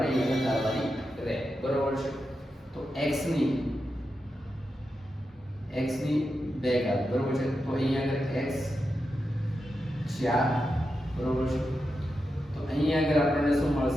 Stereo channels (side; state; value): both; normal; correlation 0.88